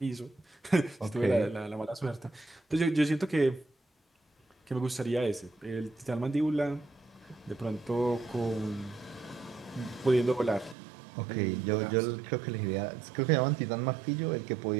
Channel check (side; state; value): left; drops out; at 10.8 s